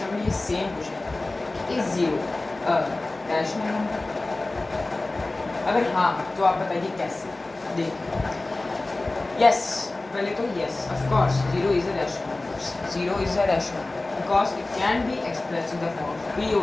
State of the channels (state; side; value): quieter; right; 3.0 dB